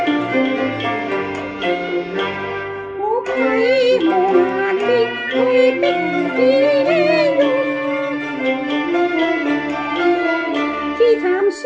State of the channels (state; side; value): identical; both; correlation 1.00